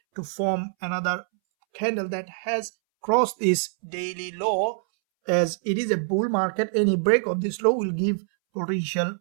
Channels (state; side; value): silent; left; 62 dB below the other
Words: to form another candle that has crossed this daily low. As it is a bull market, any break of this low will give potential